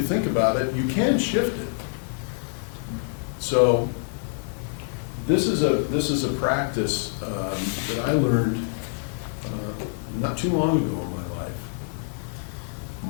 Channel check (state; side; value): silent; right; 61 dB below the other